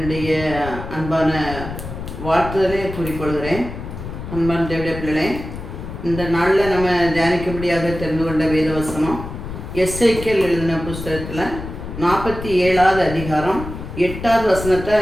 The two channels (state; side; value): noise; left; rumble, 9 dB below the sound